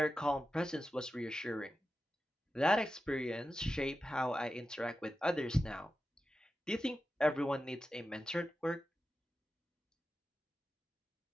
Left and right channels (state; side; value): normal; both; correlation 0.92